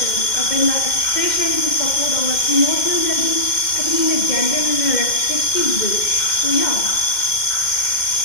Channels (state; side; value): late; right; 2.1 ms